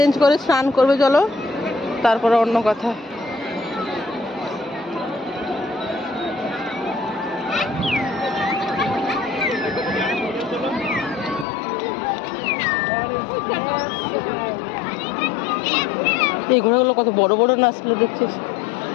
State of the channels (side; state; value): right; drops out; at 11.5 s